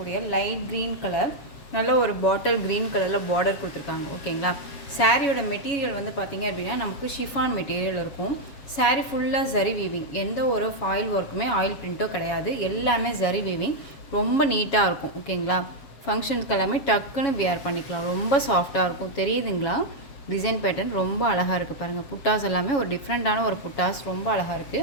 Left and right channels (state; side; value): late; right; 7.2 ms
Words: லைட் க்ரீன் கலர், நல்ல ஒரு பாட்டில் க்ரீன் கலரில் பார்டர் கொடுத்துருக்காங்க. ஓகேங்களா, சாரியோட மெட்டீரியல் வந்து பார்த்திங்க அப்படின்னா நமக்கு ஷிஃபான் மெட்டீரியல் இருக்கும். சாரீ ஃபுல்லாக ஜரி வீவிங், எந்த ஒரு ஃபாயில் ஒர்க்குமே ஆயில் பிரிண்ட்டோ கிடையாது, எல்லாமே ஜரி வீவிங். ரொம்ப நீட்டாக இருக்கும். ஓகேங்களா, ஃபங்க்ஷனுக்கு எல்லாமே டக்குன்னு வியர் பண்ணிக்கலாம். ரொம்ப சாஃப்டாக இருக்கும். தெரியுதுங்களா, டிசைன் பேட்டர்ன் ரொம்ப அழகாக இருக்குது பாருங்கள். புட்டாஸ் எல்லாமே ஒரு டிஃப்ரெண்ட்டான ஒரு புட்டாஸ், ரொம்ப அழகாக